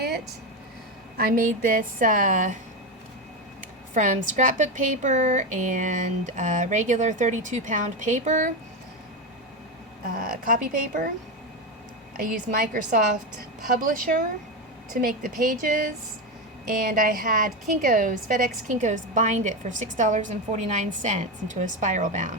I made this from scrapbook paper and regular 32-pound paper, copy paper. I used Microsoft Publisher to make the pages, and I had Kinkos, FedEx Kinkos, bind it for $6.49 into a spiral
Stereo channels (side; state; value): both; normal; correlation 0.14